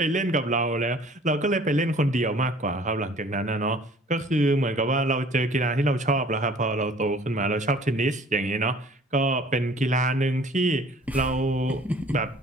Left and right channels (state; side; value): normal; both; correlation 0.52